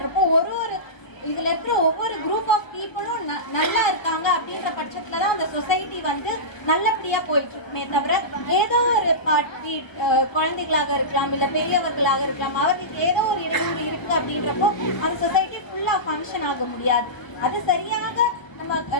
இதில் இருக்கிற ஒவ்வொரு குரூப் ஆஃப் பீப்புளும் நல்லா இருக்காங்க அப்படின்ற பட்சத்தில் தான் அந்த சொசைட்டி நல்லபடியாக போயிட்டு இருக்குமே தவிர ஏதோ ஒரு பார்ட்டி குழந்தைகளாக இருக்கலாம், இல்லை பெரியவர்களாக இருக்கலாம், அவர்களுக்கு ஏதோ ஒரு இடையூறு இருக்குது அப்படின்றப்போ அந்த சொசைட்டி ஃபுல்லாக ஃபங்க்ஷன் ஆக முடியாது. அது சரியாக நம்ம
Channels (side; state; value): right; late; 1.1 ms